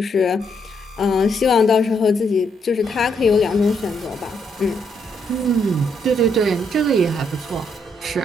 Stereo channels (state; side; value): normal; both; correlation 0.75